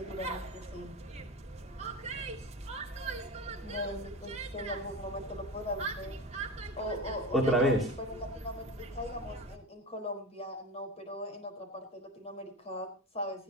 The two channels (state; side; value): normal; both; correlation 0.26